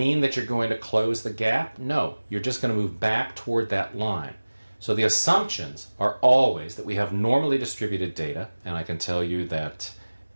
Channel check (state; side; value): inverted; both; correlation -1.00